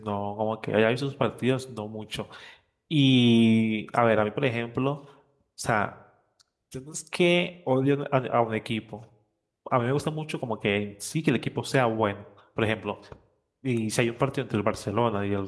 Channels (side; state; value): both; identical; correlation 1.00